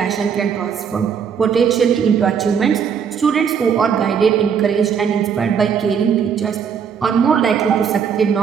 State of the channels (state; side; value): quieter; left; 7.2 dB